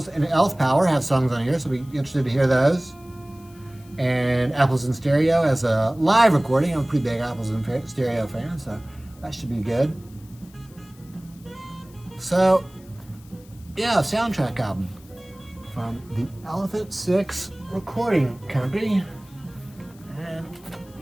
and Elf Power have songs on here, so I'll be interested to hear those. And Apples in Stereo has a live recording. I'm a pretty big Apples in Stereo fan, so that should be good. So, yeah, soundtrack album from the Elephant Six Recording Company. And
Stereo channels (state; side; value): noise; left; hiss, 26 dB below the sound